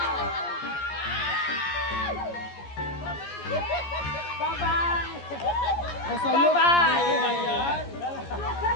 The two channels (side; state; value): right; late; 14 ms